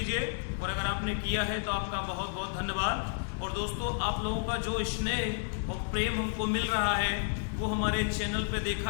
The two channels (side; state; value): right; silent; digital silence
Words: और अगर आपने किया है तो आपका बहुत बहुत धन्यवाद। और दोस्तों आप लोगों का जो स्नेह और प्रेम हमको मिल रहा है वो हमारे चैनल पे देखा